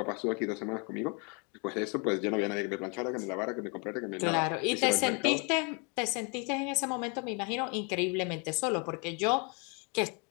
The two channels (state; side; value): quieter; right; 33.8 dB